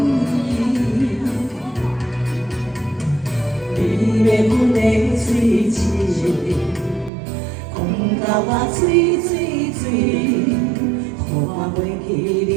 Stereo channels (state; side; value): drops out; left; at 7.1 s